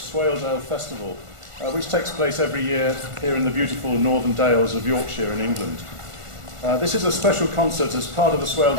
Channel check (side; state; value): left; late; 1.4 ms